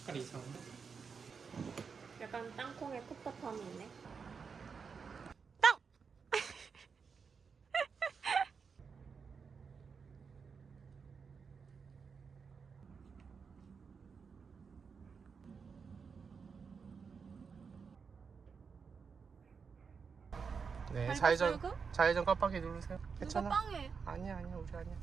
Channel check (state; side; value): quieter; left; 5.7 dB